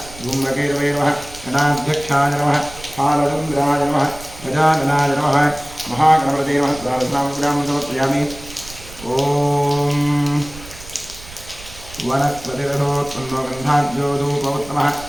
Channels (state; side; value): noise; right; rumble, 17 dB below the sound